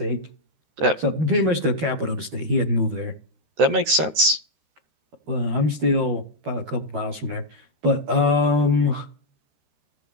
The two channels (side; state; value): left; late; 13 ms